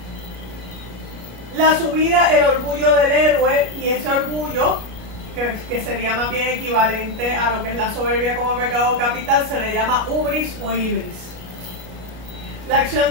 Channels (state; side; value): late; left; 33 ms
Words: La subida, el orgullo del héroe, y ese orgullo, que sería más bien equivalente a lo que es la soberbia como pecado capital, se le llama hubris o ibris. La acción